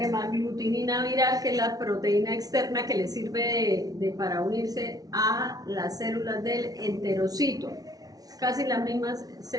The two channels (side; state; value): left; late; 0.18 ms